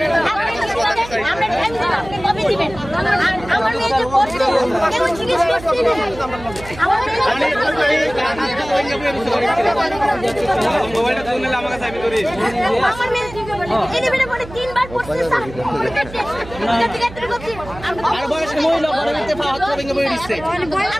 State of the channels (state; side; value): noise; right; hum, 15 dB below the sound